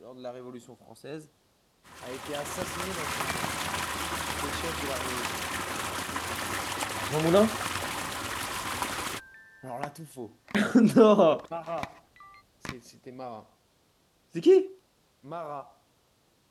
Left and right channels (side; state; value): both; identical; correlation 1.00